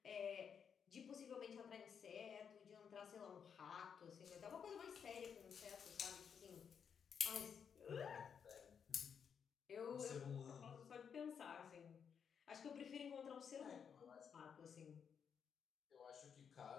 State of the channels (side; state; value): right; quieter; 7.2 dB